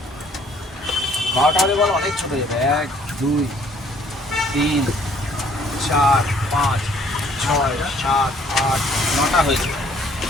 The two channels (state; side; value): normal; both; correlation 0.61